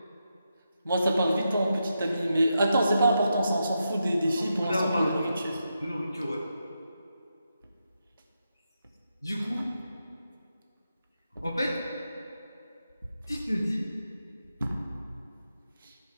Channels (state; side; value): inverted; both; correlation -0.85